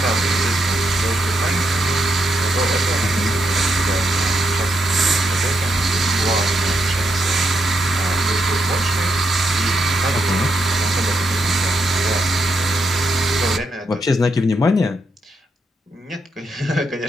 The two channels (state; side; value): normal; both; correlation 0.80